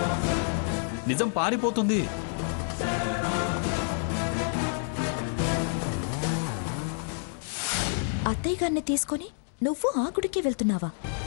నిజం పారిపోతుంది. అత్తయ్య గారిని తీసుకొని నువ్వు ఆ గుడికి వెళ్తున్నావా?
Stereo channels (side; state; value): right; silent; 59 dB below the other